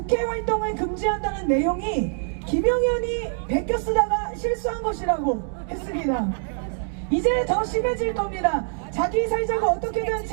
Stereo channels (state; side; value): silent; left; digital silence